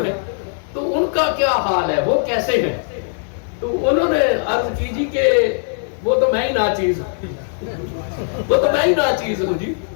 ہیں، تو ان کا کیا حال ہے، وہ کیسے ہیں؟ تو انہوں نے عرض کی جی کہ وہ تو میں ہی ناچیز ہوں جی۔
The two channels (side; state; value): right; silent; digital silence